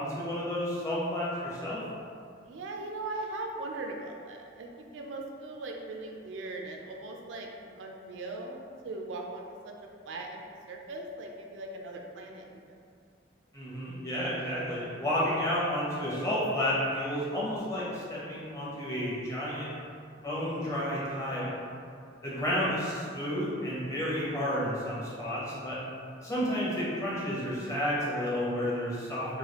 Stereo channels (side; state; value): both; normal; correlation 0.29